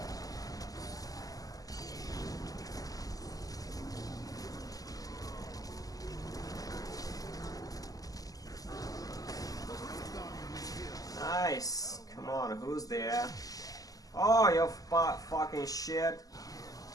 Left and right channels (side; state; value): right; late; 0.17 ms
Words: Nice. Come on, who's there? Oh, you fucking shit.